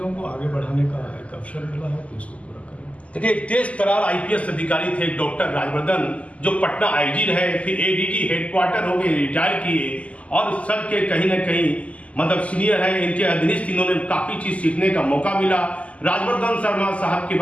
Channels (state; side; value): late; right; 0.066 ms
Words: को आगे बढ़ाने का एक अवसर मिला है तो इसको पूरा करेंगे। देखिए, एक तेज तरार IPS अधिकारी थे डॉक्टर राजवर्धन, जो पटना IG रहे, फिर ADG हेडक्वार्टर हो गए, रिटायर किए, और सर के कहीं ना कहीं मतलब सीनियर है, इनके अधीनस्थ इन्होंने काफ़ी चीज़ सीखने का मौका मिला। राजवर्धन शर्मा साहब के